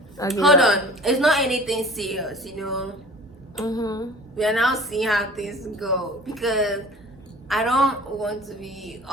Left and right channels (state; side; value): normal; both; correlation 0.44